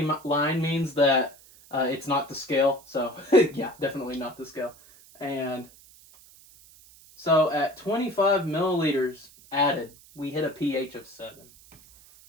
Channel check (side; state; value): right; noise; hiss, 24 dB below the sound